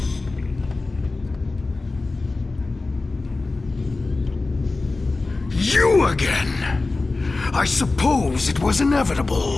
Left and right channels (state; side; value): quieter; right; 3.5 dB